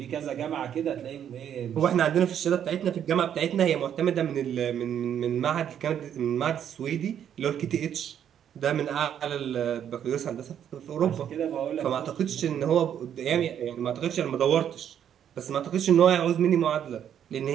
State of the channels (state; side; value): quieter; left; 9.4 dB